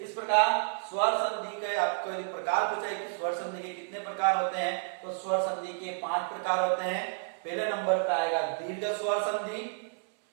प्रकार स्वर संधि के आपको यदि प्रकार पूछा है कि स्वर संधि के कितने प्रकार होते हैं, तो स्वर संधि के 5 प्रकार होते हैं। पहले नंबर पे आएगा दीर्घ स्वर संधि,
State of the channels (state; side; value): silent; left; 57 dB below the other